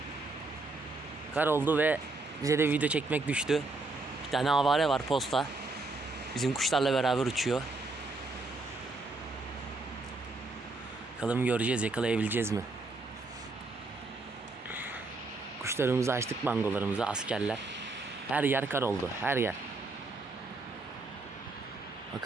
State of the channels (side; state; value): left; quieter; 3.4 dB